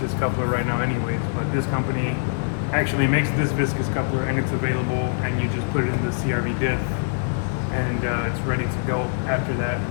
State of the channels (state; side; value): silent; right; digital silence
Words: coupler right now anyways, but this company actually makes this viscous coupler and it's available, and you just put it in the CRV diff and it's ready to go after that.